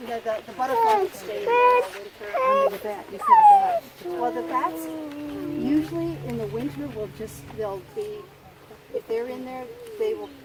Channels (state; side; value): identical; both; correlation 1.00